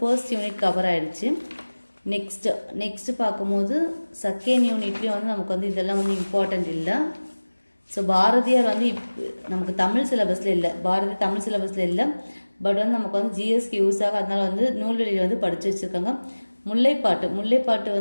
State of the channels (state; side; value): inverted; both; correlation -1.00